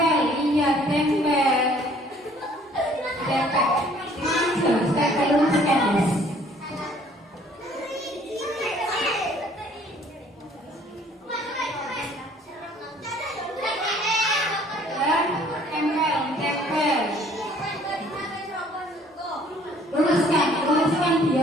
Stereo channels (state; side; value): normal; both; correlation 0.57